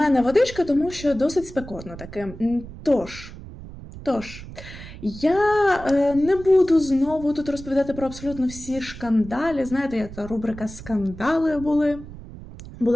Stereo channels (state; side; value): noise; right; rumble, 14 dB below the sound